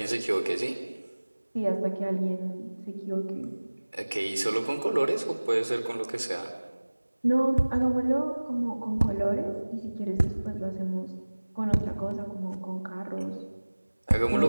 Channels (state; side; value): inverted; both; correlation -1.00